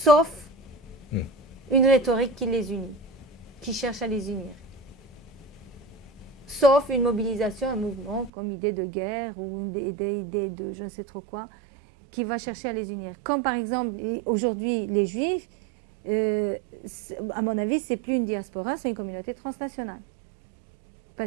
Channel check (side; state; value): left; drops out; at 8.3 s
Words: une rhétorique qui les unit, qui cherche à les unir. Sauf une mobilisation, un mouvement comme idée de guerre ou une idée de je ne sais trop quoi, qui va chercher à les unir. Comme par exemple, aujourd'hui, les Juifs, à mon avis, ce n'est plus une diaspora, c'est une communauté transnationale.